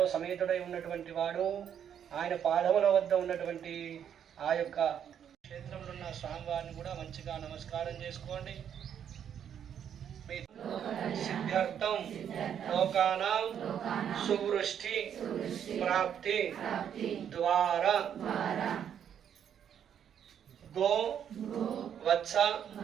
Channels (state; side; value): quieter; left; 8.8 dB